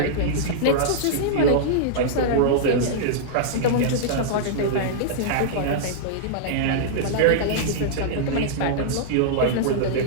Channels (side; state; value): both; different; correlation -0.02